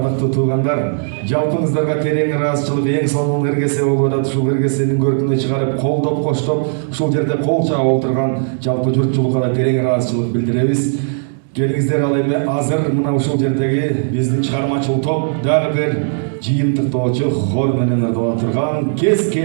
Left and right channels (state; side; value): silent; left; digital silence